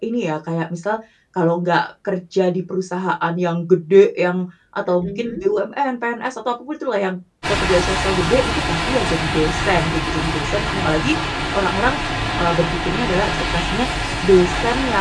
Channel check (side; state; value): both; identical; correlation 1.00